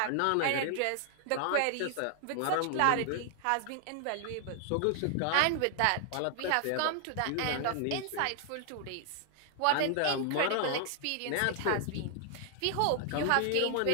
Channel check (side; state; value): both; different; correlation 0.00